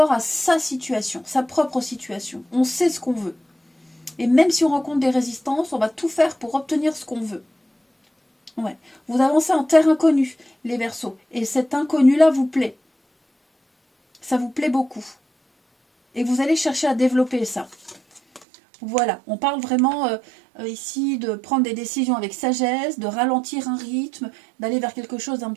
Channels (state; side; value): drops out; left; at 18.4 s